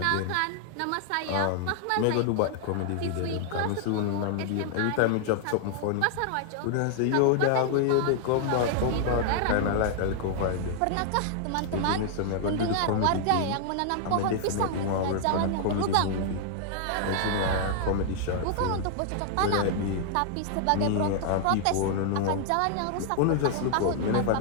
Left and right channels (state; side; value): different; both; correlation 0.00